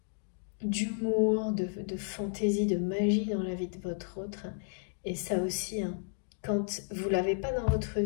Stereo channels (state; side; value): silent; right; digital silence